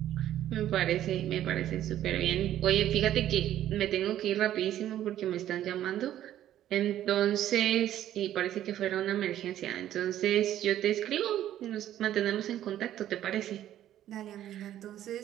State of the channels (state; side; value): quieter; left; 12.1 dB